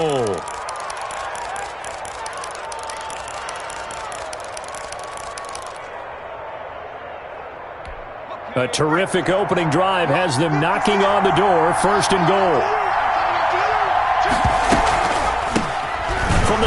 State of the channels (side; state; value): both; identical; correlation 1.00